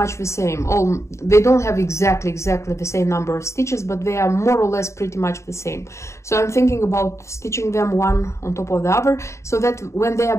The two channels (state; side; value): late; right; 0.14 ms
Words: the same. They don't have exactly the same number of stitches, but they are more or less pretty much the same. So I'm thinking about stitching them one on top of the other, so that when they